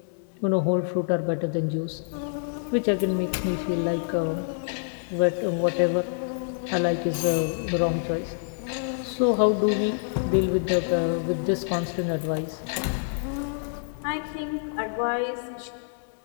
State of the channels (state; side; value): silent; right; digital silence